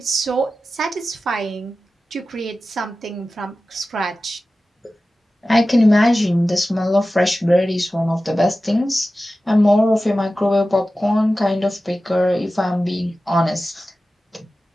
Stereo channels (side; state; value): both; normal; correlation 0.95